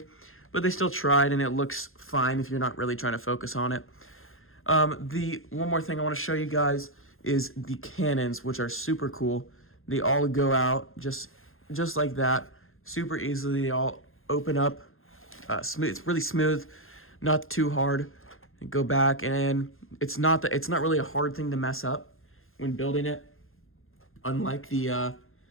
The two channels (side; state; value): right; late; 0.60 ms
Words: but they still tried, and it looks fine if you're not really trying to focus on it. The one more thing I want to show you guys is the cannons, which are super cool. They all go out just like that, super easily. They all open up, smooth. It's really smooth, not too hard. And go back, and it's not really a hard thing to mess up when building it. Unlike the